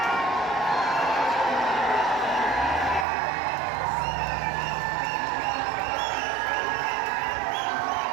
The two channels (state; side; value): drops out; left; at 3.1 s